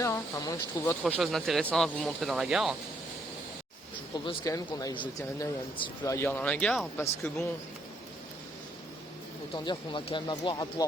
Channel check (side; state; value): both; normal; correlation 0.71